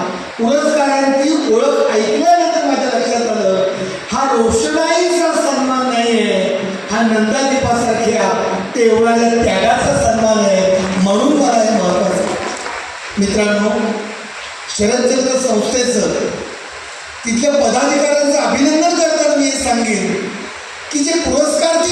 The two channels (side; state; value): both; identical; correlation 1.00